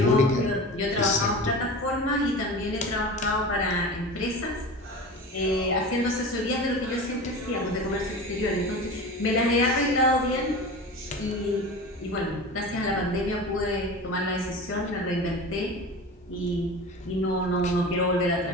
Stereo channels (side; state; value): both; normal; correlation 0.32